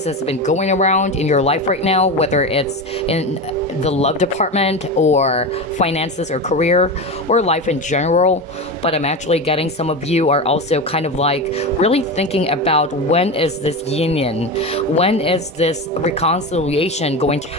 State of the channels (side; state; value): both; normal; correlation 0.21